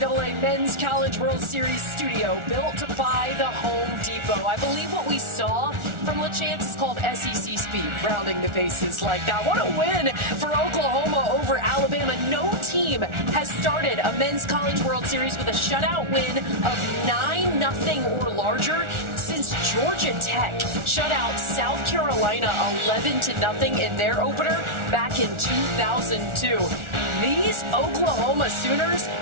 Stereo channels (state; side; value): late; left; 1.4 ms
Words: Men's College World Series studio, built by the Home Depot. I believe what we saw from LeChance is called SEC speed, rounding the bases like that. What a win for Oklahoma over Alabama. No team has started a Men's College World Series with a shutout win of 9-0 or larger since Georgia Tech shut out South Carolina 11-0 in their opener back in 2002. These Oklahoma Sooners